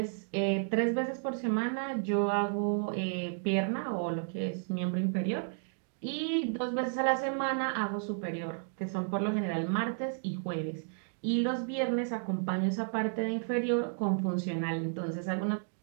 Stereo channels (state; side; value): silent; left; digital silence